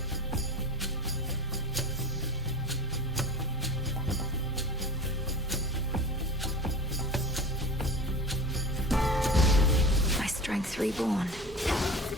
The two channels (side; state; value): both; normal; correlation 0.34